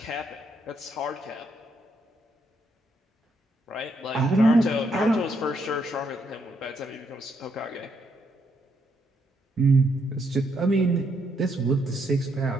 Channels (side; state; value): both; normal; correlation 0.75